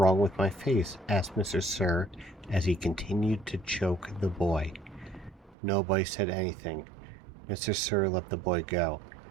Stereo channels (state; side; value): drops out; left; at 5.6 s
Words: with my face?" asked Mr. Sir as he continued to choke the boy. Nobody said anything. Mr. Sir let the boy go.